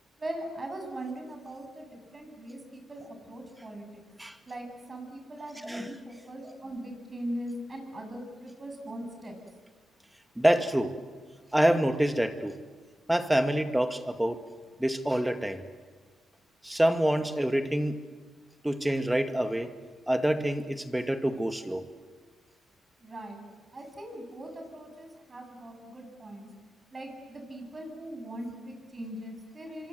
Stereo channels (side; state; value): both; normal; correlation 0.97